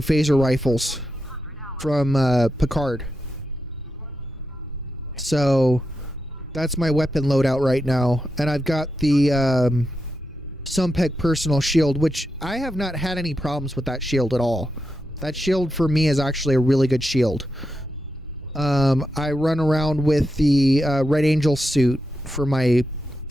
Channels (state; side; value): normal; both; correlation 0.86